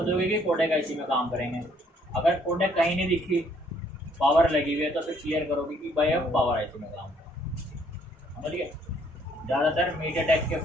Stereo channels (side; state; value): both; normal; correlation 0.65